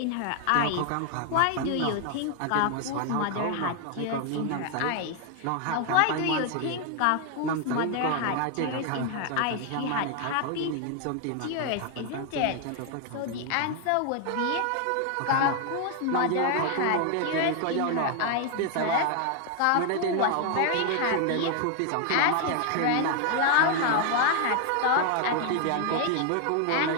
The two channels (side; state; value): both; different; correlation 0.00